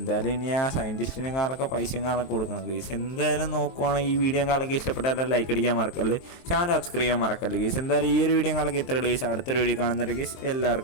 ഇനി ആ സയൻറ്റിസ്റ്റിനും കാലൊക്കെ പൈസയും കാലൊക്കെ കൊടുക്കണം കേസ്. എന്തായാലും നോക്കുവാണെങ്കിൽ ഈ വീഡിയോ കാലൊക്കെ ഇഷ്ടപ്പെട്ടാലും ലൈക്ക് അടിക്കാൻ മറക്കല്ല്, ചാനൽ സബ്സ്ക്രൈബ് ചെയ്യാൻ മറക്കല്ല് കേസ്. എന്തായാലും ഈ ഒരു വീഡിയോ കാലൊക്കെ ഇത്ര കേസ്. അടുത്തൊരു വീഡിയോ കാണുന്നുണ്ട് കേസ്.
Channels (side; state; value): right; late; 23 ms